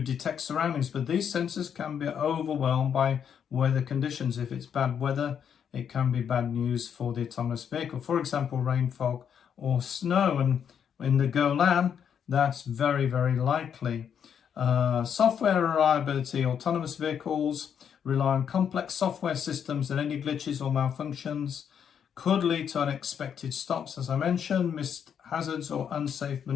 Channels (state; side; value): quieter; right; 8.0 dB